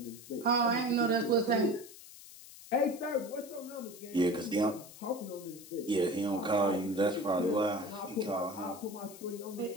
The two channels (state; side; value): noise; left; hiss, 17 dB below the sound